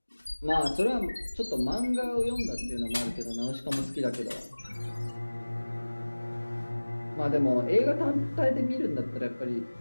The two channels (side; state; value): both; inverted; correlation -1.00